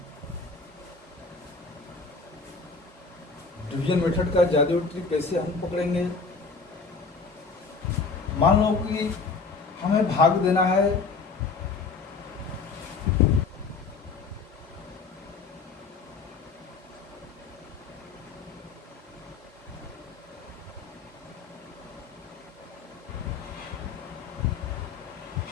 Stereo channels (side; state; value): right; quieter; 4.5 dB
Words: डिवीजन मेथड का जादुई ट्रिक कैसे हम पकड़ेंगे? मान लो कि हमें भाग देना है